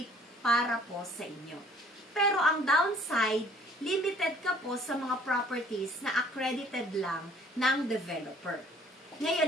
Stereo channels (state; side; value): normal; both; correlation 0.57